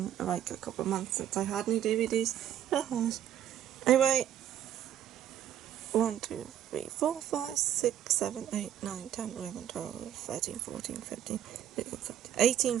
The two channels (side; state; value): left; quieter; 10.9 dB